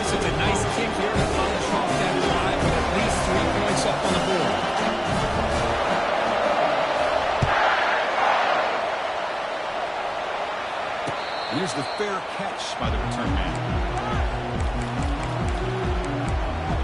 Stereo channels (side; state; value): both; identical; correlation 1.00